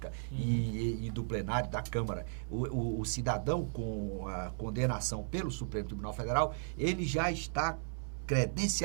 e do plenário da Câmara. O cidadão com a condenação pelo Supremo Tribunal Federal, ele já está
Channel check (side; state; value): left; silent; 54 dB below the other